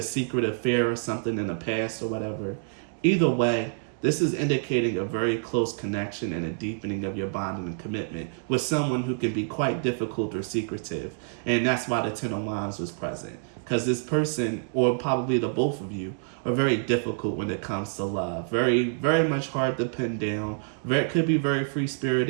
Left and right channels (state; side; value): silent; left; digital silence